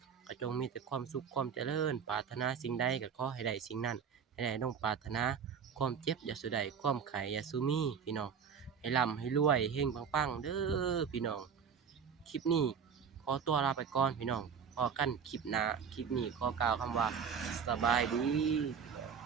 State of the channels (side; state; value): left; quieter; 6.9 dB